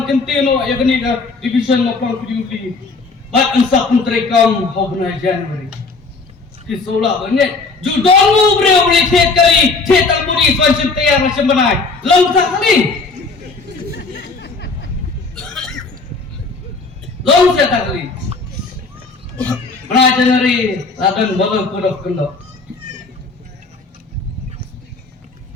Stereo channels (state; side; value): quieter; right; 4.0 dB